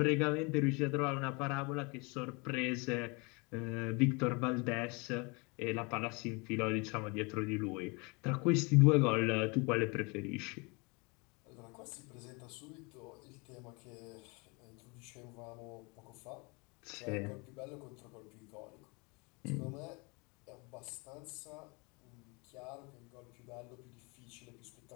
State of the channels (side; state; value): right; quieter; 29.4 dB